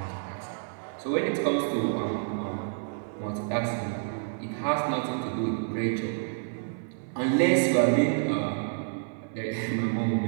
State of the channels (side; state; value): left; silent; 59 dB below the other